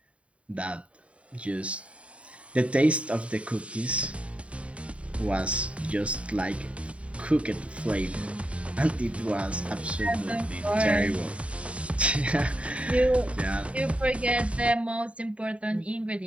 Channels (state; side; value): late; left; 0.063 ms